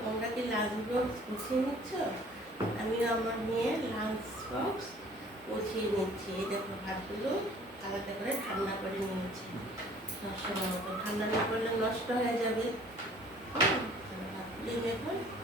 তোমরা কি লাঞ্চ বক্স গুছিয়ে নিচ্ছ? আমিও আমার মেয়ের লাঞ্চ বক্স গুছিয়ে নিচ্ছি। এই দেখো, ভাতগুলো আলাদা করে ঠান্ডা করে নিয়েছি। সবসময় মতো ঠান্ডা না করলে নষ্ট হয়ে যাবে। ভাতগুলি এখন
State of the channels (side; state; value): both; normal; correlation 0.53